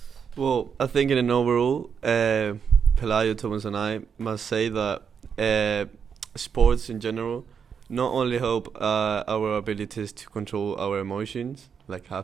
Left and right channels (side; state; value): left; quieter; 6.9 dB